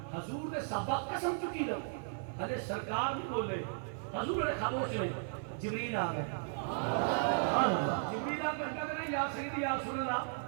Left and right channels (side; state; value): left; silent; digital silence